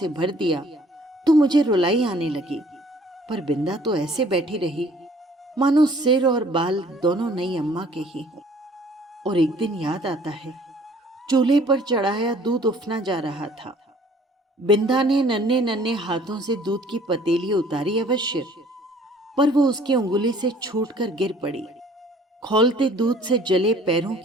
भर दिया तो मुझे रुलाई आने लगी। पर बिंदा तो ऐसे बैठी रही मानो सिर और बाल दोनों नई अम्मा के ही हों। और एक दिन याद आता है, चूल्हे पर चढ़ाया दूध उफना जा रहा था। बिंदा ने नन्हे नन्हे हाथों से दूध की पतीली उतारी अवश्य, पर वो उसकी उंगली से छूटकर गिर पड़ी। खौलते दूध से जले पैरों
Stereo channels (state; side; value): normal; both; correlation 0.55